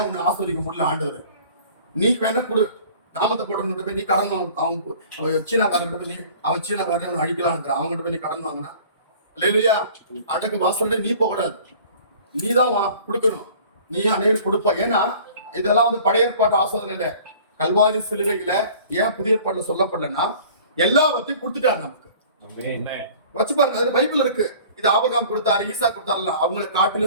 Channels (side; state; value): both; inverted; correlation -0.48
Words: உன்னை ஆஸ்வதிக்க முடியல ஆண்டவர்? நீ வேணா கொடு, நாமத்தை போட்டு போய் நீ கடன் வாங்க. அவங்க சீனாக்காரன் போய் நீ அவன் சீனாக்காரன் அடிக்கலாம் இருக்கிறான், அவங்ககிட்ட போய் நீ கடன் வாங்கினா இல்லையா? அடக்கு வாசல்ல நீ போகக்கூடாது, நீ தான் கொடுக்கணும். நீ அநேகர் கொடுப்ப. ஏன்னா இதெல்லாம் வந்து பழைய ஏற்பாட்டு ஆசோதனையில கல்வாரி சிலுவையில ஏன் புதிய ஏற்பாட்டுல சொல்லப்படலன்னா எல்லாவற்றையும் கொடுத்துட்டாரு நமக்கு. வச்சு பாருங்க, அதுல பைபிள் இருக்கு. இது ஆபிரகாம் கொடுத்தாரு, ஈசா கொடுத்தாருல, அவங்களை